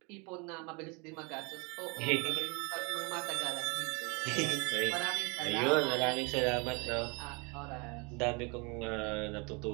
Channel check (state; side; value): quieter; left; 30.6 dB